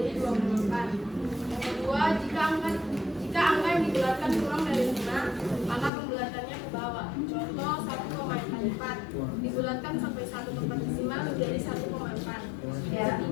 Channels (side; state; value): right; drops out; at 5.9 s